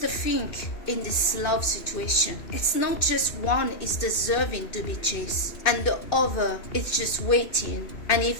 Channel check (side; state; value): right; late; 2.5 ms